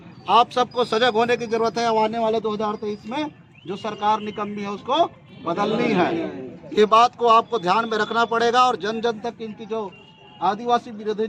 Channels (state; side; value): identical; both; correlation 1.00